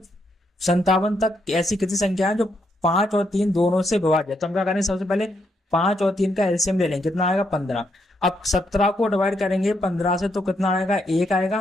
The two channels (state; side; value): normal; both; correlation 0.77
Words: तक ऐसी कितनी संख्या है जो 5 और 3 दोनों से विभाज्य है? तो हम क्या करेंगे, सबसे पहले 5 और 3 का एलसीएम ले लेंगे। कितना आएगा? 15। अब 17 को डिवाइड करेंगे 15 से तो कितना आएगा? 1